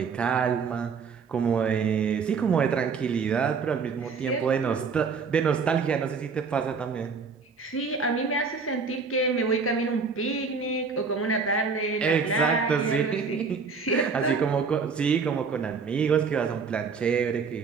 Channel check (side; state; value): left; quieter; 5.2 dB